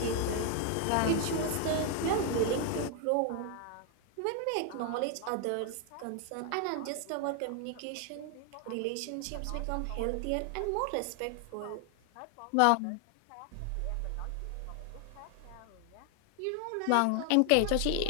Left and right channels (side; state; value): both; different; correlation 0.00